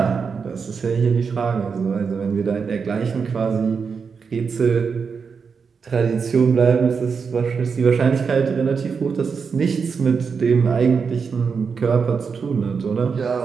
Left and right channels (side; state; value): left; quieter; 5.7 dB